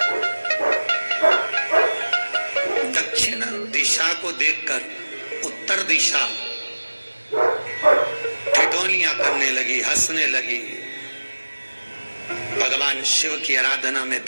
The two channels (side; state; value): both; inverted; correlation -1.00